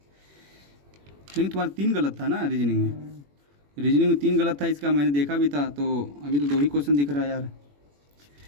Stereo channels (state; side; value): late; left; 21 ms